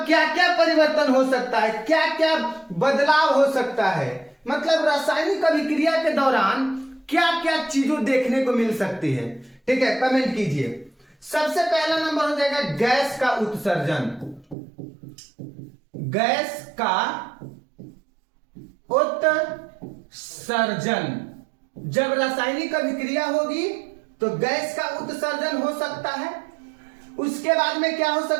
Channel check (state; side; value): drops out; left; at 14.6 s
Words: क्या क्या परिवर्तन हो सकता है, क्या क्या बदलाव हो सकता है, मतलब रासायनिक अभिक्रिया के दौरान क्या क्या चीजों देखने को मिल सकती है। ठीक है, कमेंट कीजिए। सबसे पहला नंबर हो जाएगा गैस का उत्सर्जन। गैस का उत्सर्जन, जब रासायनिक अभिक्रिया होगी तो गैस का उत्सर्जन हो सकता है। उसके बाद में क्या हो